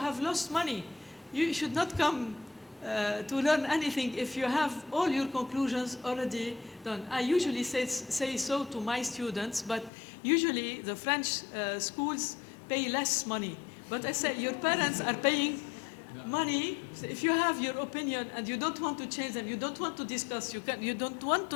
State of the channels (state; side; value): drops out; right; at 9.9 s